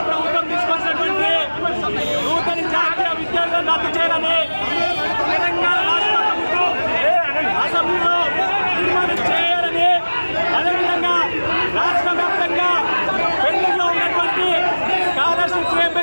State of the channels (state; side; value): inverted; both; correlation -1.00